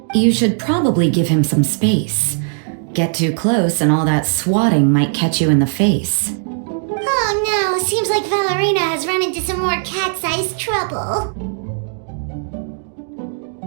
You should probably give him some space. Get too close and all that swatting might catch you in the face. Oh no, seems like Valerina has run into some more cat-sized trouble.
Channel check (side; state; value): left; silent; digital silence